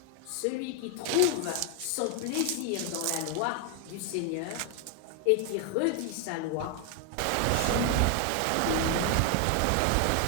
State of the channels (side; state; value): both; different; correlation 0.01